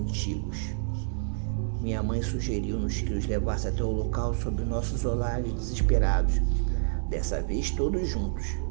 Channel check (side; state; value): left; silent; digital silence